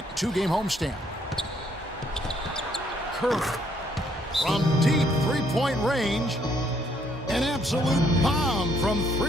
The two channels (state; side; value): normal; both; correlation 0.68